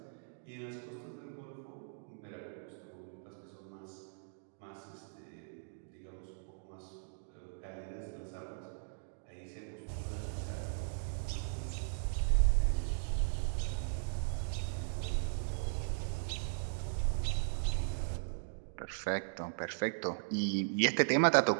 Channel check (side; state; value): left; silent; digital silence